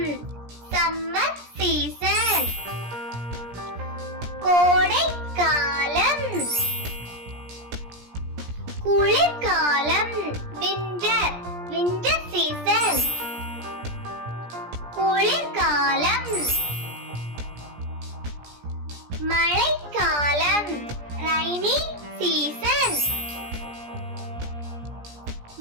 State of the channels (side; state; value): left; late; 17 ms